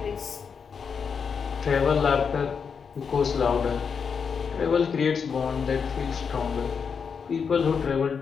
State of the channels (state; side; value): quieter; right; 6.2 dB